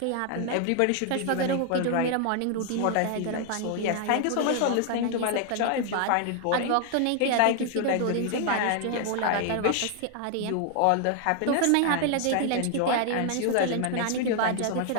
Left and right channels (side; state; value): both; different; correlation 0.00